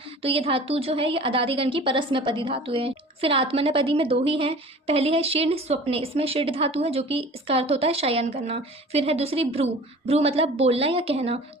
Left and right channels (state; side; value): normal; both; correlation 0.43